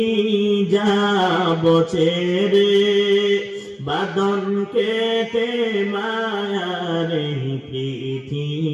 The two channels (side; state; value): both; identical; correlation 1.00